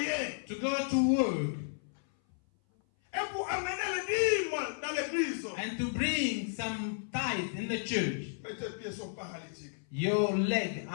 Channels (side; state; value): right; silent; 56 dB below the other